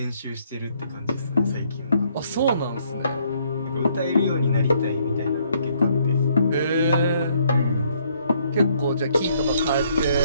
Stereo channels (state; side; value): inverted; both; correlation -0.68